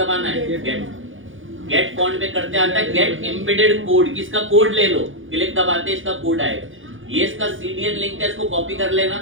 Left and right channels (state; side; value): late; left; 0.58 ms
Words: है, गेट फॉन्ट पे करते आता है गेट एम्बेडेड कोड, किसका कोड ले लो, क्लिक दबाते इसका कोड आएगा। ये इसका सीडीएन लिंक है, इसको कॉपी कर लेना,